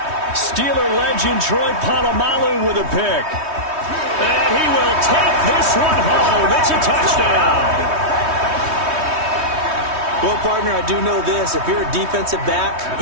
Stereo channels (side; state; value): left; late; 3.2 ms